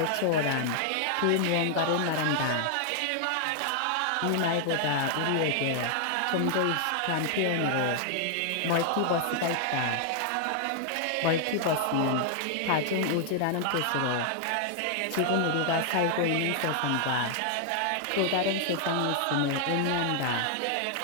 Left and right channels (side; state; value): both; different; correlation 0.00